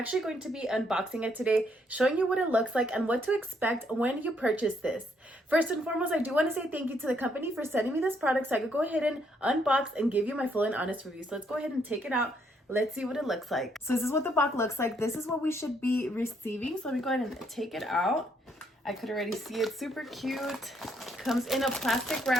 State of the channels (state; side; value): normal; both; correlation 0.72